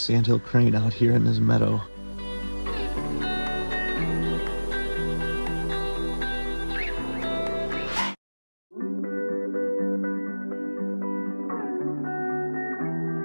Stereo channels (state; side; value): inverted; both; correlation -1.00